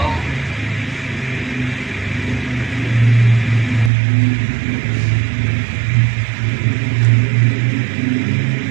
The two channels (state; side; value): drops out; left; at 3.9 s